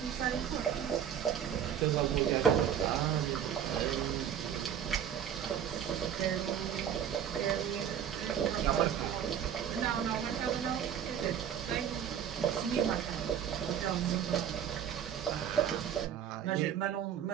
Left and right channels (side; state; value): left; quieter; 9.0 dB